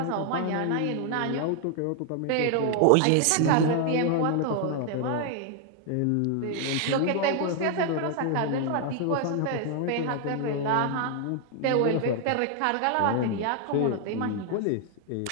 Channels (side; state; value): both; different; correlation 0.00